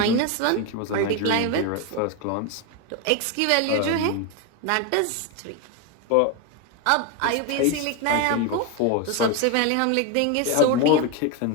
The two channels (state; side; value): different; both; correlation 0.02